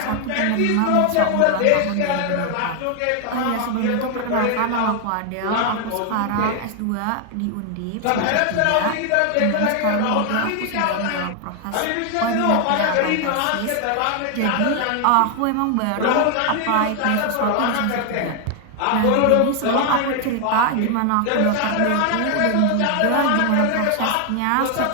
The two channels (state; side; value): different; both; correlation 0.00